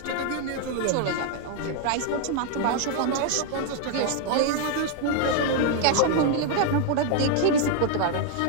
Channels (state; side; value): different; both; correlation 0.00